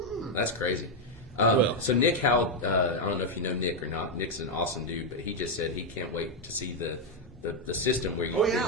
That's crazy. So Nick Howell, I don't know if you know Nick or not. Nick's an awesome dude, but he just said he can't wait to see the system where you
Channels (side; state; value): both; normal; correlation 0.02